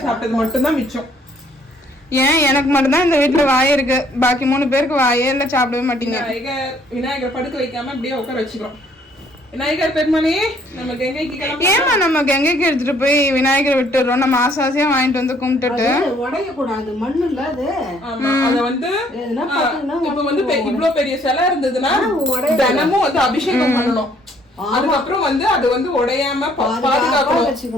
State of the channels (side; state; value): both; normal; correlation 0.63